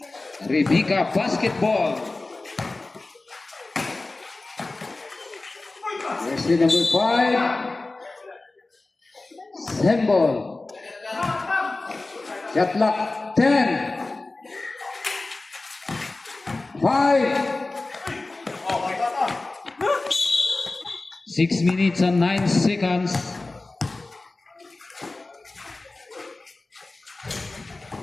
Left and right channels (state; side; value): quieter; right; 3.2 dB